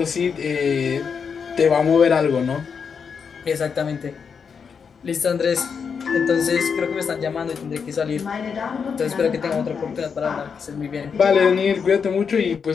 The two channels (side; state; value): right; quieter; 6.2 dB